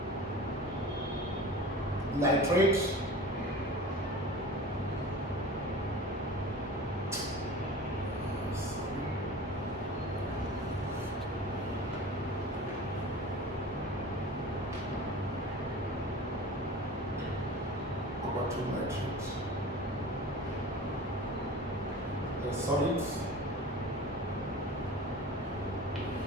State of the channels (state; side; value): normal; both; correlation 0.37